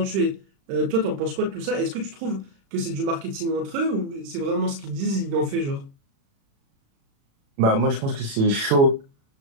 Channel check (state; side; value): late; left; 36 ms